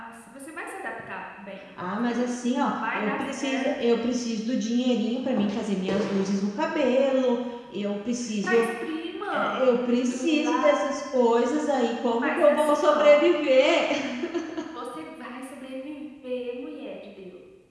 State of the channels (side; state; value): both; identical; correlation 1.00